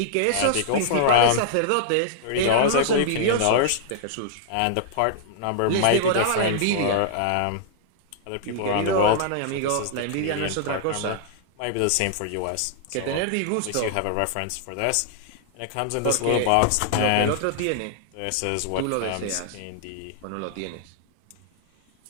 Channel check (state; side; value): different; both; correlation -0.01